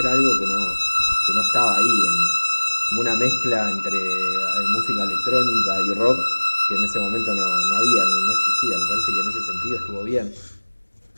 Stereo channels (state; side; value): inverted; both; correlation -1.00